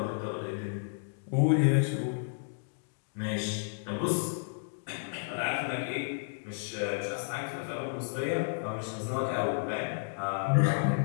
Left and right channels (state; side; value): silent; right; digital silence